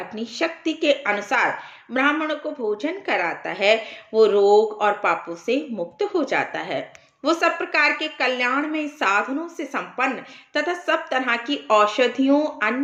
शक्ति के अनुसार ब्राह्मणों को भोजन कराता है, वो रोग और पापों से मुक्त हो जाता है। वो सब प्रकार के कल्याण में साधनों से संपन्न तथा सब तरह की औषधियों,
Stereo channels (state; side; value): identical; both; correlation 1.00